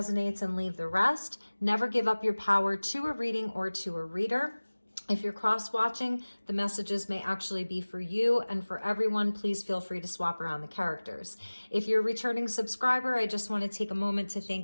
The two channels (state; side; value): inverted; both; correlation -1.00